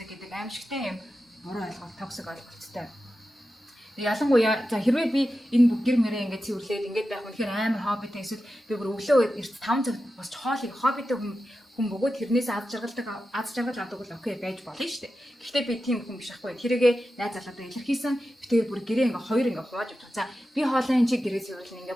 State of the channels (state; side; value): normal; both; correlation 0.92